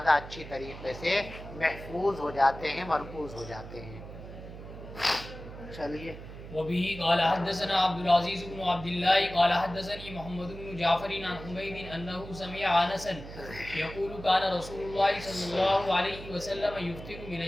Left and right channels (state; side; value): noise; right; hum, 13 dB below the sound